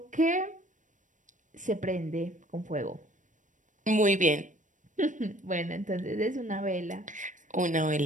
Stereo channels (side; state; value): left; late; 0.37 ms